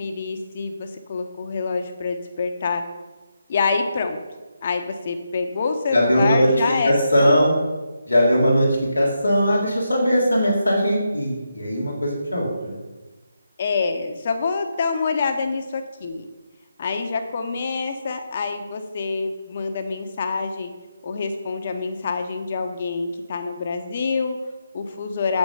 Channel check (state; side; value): inverted; both; correlation -0.84